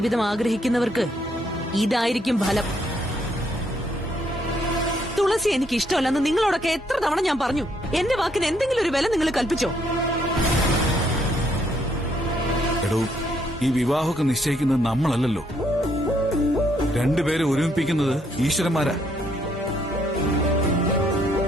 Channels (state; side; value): normal; both; correlation 0.71